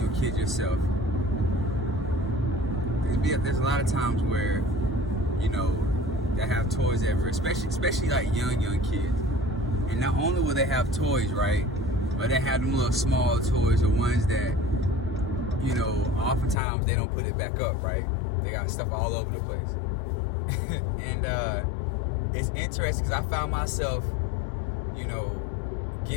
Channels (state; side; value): drops out; right; at 16.6 s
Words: know, kids yourself, there's a lot of times where, you know, they have toys everywhere, especially like young kids. And not only will they have toys, right, but they have them little small toys, or ones that, you know, oftentimes they don't put it back up, right? They got stuff all over the place. And it's interesting because I found myself, you know,